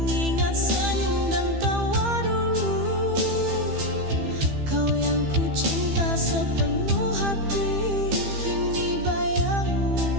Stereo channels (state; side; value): late; left; 15 ms